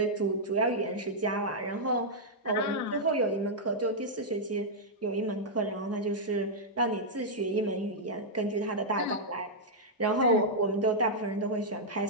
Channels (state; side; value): normal; both; correlation -0.07